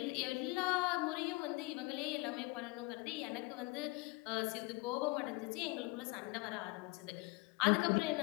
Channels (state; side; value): quieter; right; 24.7 dB